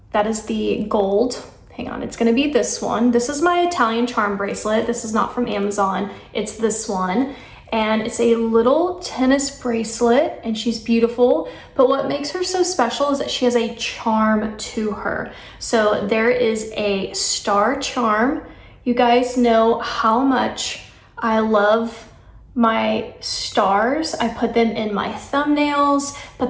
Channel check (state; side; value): identical; both; correlation 1.00